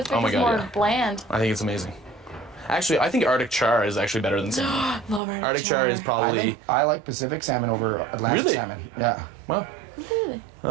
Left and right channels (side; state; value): left; drops out; at 5.2 s